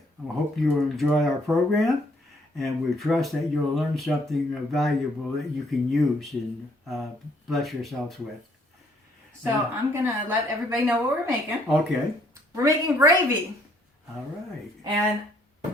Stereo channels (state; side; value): normal; both; correlation 0.66